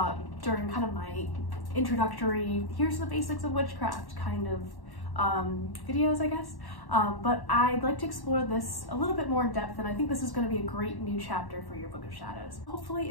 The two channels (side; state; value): right; late; 1.1 ms